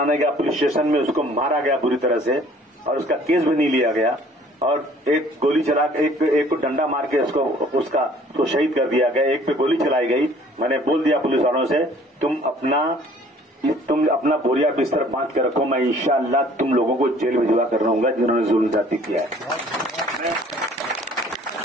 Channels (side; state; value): both; normal; correlation 0.55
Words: गया पुलिस स्टेशन में, उसको मारा गया बुरी तरह से और उसका केस भी नहीं लिया गया और एक गोली चला एक को डंडा मार के उसको शहीद कर दिया गया। एक पे गोली चलाई गई। मैंने बोल दिया पुलिस वालों से, तुम अपना बोरिया बिस्तर बांध के रखो, मैं इंशाअल्लाह तुम लोगों को जेल भिजवा कर रहूंगा जिन्होंने जुल्म जाति किया है।